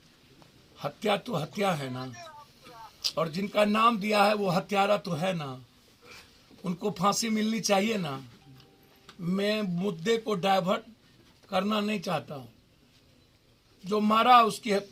हत्या तो हत्या है ना, और जिनका नाम दिया है वो हत्यारा तो है ना, उनको फांसी मिलनी चाहिए ना। मैं मुद्दे को डाइवर्ट करना नहीं चाहता हूँ, जो मारा उसकी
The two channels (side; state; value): both; identical; correlation 1.00